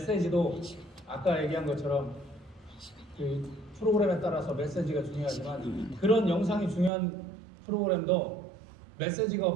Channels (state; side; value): drops out; left; at 6.9 s